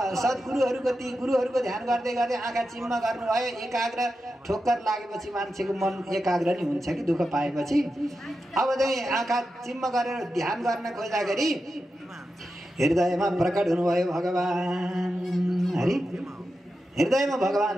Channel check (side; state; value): both; normal; correlation 0.90